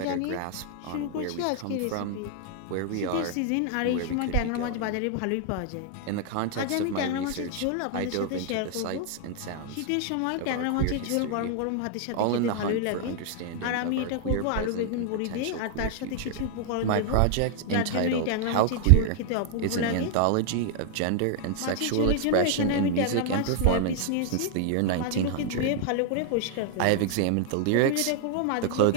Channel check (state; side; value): different; both; correlation 0.00